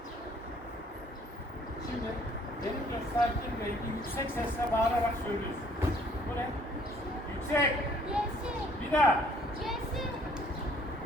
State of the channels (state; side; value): normal; both; correlation 0.60